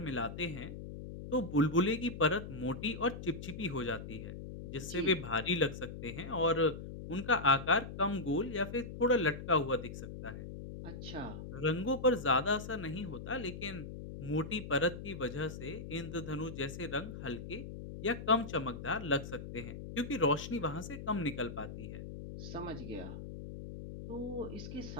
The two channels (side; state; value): left; noise; hum, 9 dB below the sound